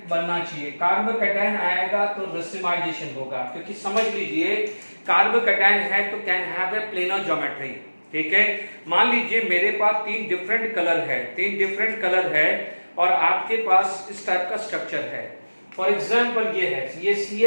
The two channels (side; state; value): both; inverted; correlation -1.00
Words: बनना चाहिए, कार्बोकैटायन आएगा तो रेसिमाइजेशन होगा, क्योंकि समझ लीजिए कार्बोकैटायन है तो can have a planar geometry. ठीक है, मान लीजिए मेरे पास 3 डिफरेंट कलर है, 3 डिफरेंट कलर है और आपके पास इस टाइप का स्ट्रक्चर है। फॉर एग्जाम्पल ये है, ये